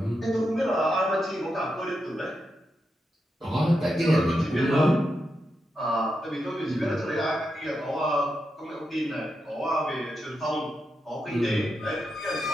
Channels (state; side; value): normal; both; correlation 0.86